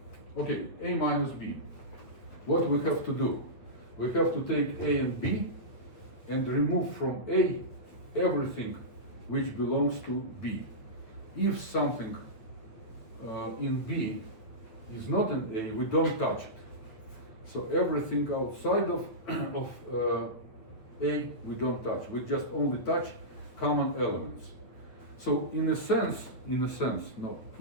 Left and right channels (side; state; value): right; late; 8.7 ms